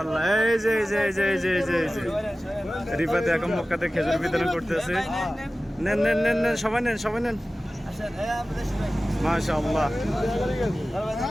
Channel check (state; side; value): normal; both; correlation 0.96